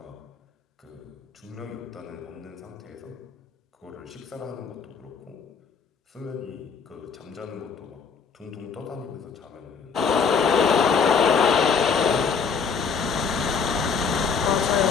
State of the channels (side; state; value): right; quieter; 5.9 dB